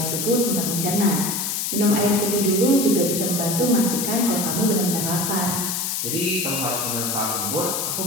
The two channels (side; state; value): left; noise; hiss, 1 dB below the sound